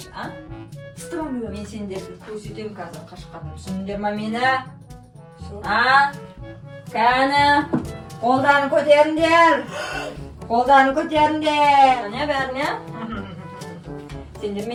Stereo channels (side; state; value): both; identical; correlation 1.00